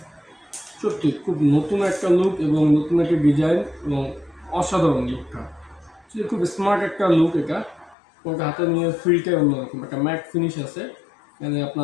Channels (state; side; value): drops out; right; at 8.0 s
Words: সত্যি খুব নতুন একটা লুক এবং নতুন একটা ডিজাইন এবং অসাধারণ লুকটা। খুব স্মার্ট একটা লুক এটা। ওটা হাতে নিয়ে ফিলটাই অন্যরকম, একটা ম্যাট ফিনিশ আছে, মানে